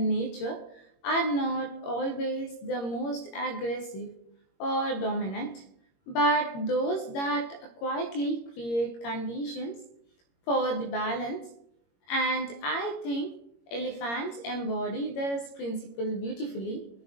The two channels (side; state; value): right; late; 21 ms